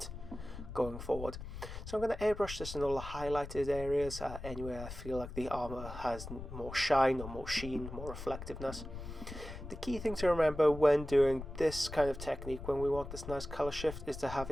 going forward. So I'm going to airbrush this in all the highlighted areas, anywhere I feel like the armor has more shine or more sheen, more reflectiveness. The key thing to remember when doing this kind of technique, when we want this nice color shift, is to have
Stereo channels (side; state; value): left; noise; rumble, 10 dB below the sound